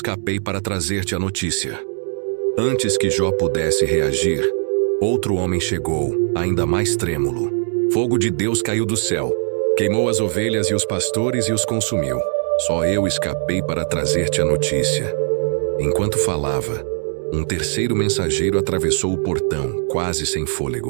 para trazer-te a notícia. Antes que Jó pudesse reagir, outro homem chegou, ainda mais trêmulo. Fogo de Deus caiu do céu, queimou as ovelhas e os pastores e os consumiu. Só eu escapei para trazer-te a notícia. Enquanto falava, um terceiro mensageiro atravessou o portão, quase sem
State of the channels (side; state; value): left; silent; digital silence